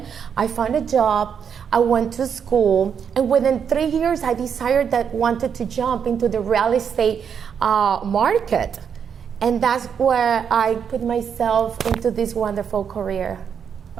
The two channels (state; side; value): quieter; left; 7.4 dB